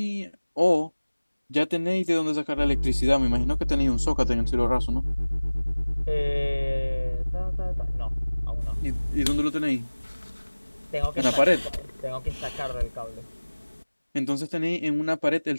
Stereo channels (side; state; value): both; inverted; correlation -1.00